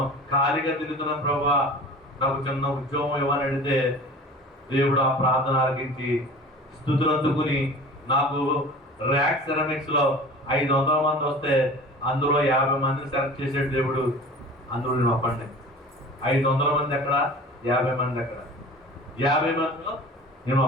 ఖాళీగా తిరుగుతున్నాను ప్రభా, నాకు చిన్న ఉద్యోగం ఇవ్వని అడిగితే దేవుడు ఆ ప్రార్థన ఆలకించి స్తుతులు అందుకుని నాకు ర్యాక్ సెరమిక్స్ లో 500 మంది వస్తే అందులో 50 మందిని సెలెక్ట్ చేసాడు దేవుడు. అందులో నేను ఒక్కడిని. 500 మంది ఎక్కడ, 50 మంది ఎక్కడ? 50 మందిలో నేను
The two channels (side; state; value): both; normal; correlation 0.41